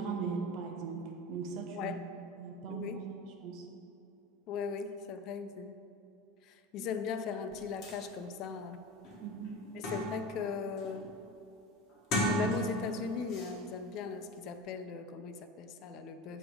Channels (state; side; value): normal; both; correlation 0.30